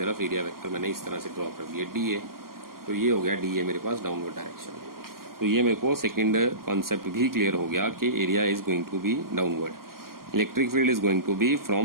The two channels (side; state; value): left; late; 0.92 ms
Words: एरिया वेक्टर मैंने इस तरह से ड्रॉ कर दिया डी ए। तो ये हो गया डी ए मेरे पास डाउनवर्ड डायरेक्शन में। तो ये मेरे को सेकंड कॉन्सेप्ट भी क्लियर हो गया कि area is going to be downward, electric field is going to be